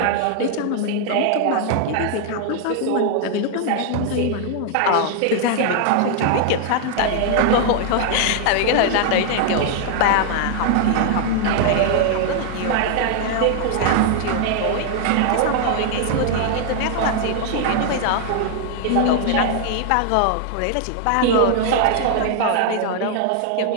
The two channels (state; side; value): different; both; correlation 0.00